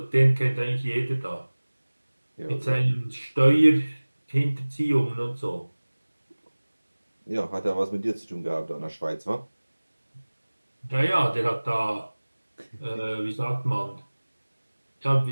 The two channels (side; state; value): both; inverted; correlation -1.00